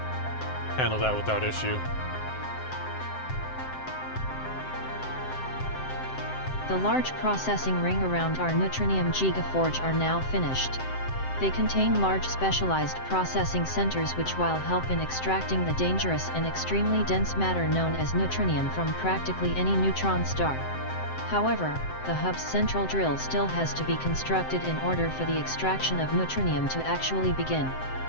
handle that without issue. The large processing ring around our Neutronium Gigaforge are now finished. They contain large specialized processing centers which will help in extracting the dangerous and extremely dense matter known as neutronium from practically any neutron star. However, the hub's central drill still has to be constructed in order for the extraction of neutronium to actually begin.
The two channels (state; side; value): late; right; 7.7 ms